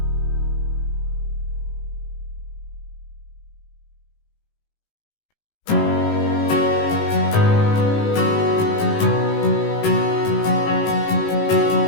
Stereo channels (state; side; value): late; right; 18 ms